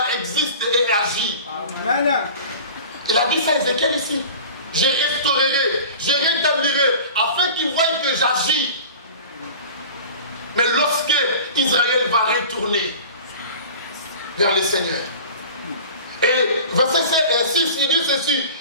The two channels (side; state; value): both; inverted; correlation -0.39